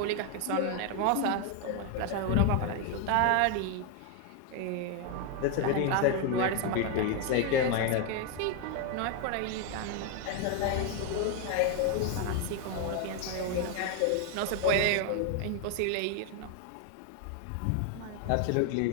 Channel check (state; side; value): different; both; correlation 0.01